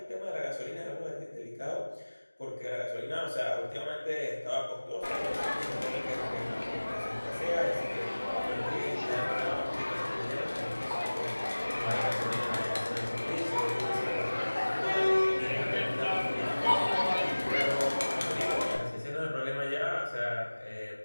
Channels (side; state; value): both; inverted; correlation -1.00